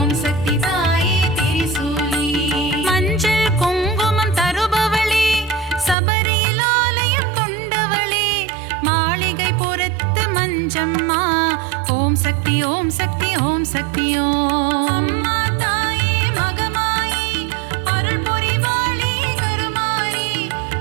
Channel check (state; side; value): drops out; left; at 6.0 s